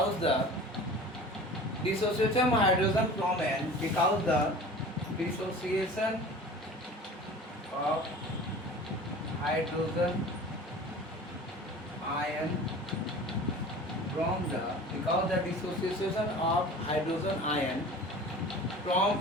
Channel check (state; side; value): normal; both; correlation 0.40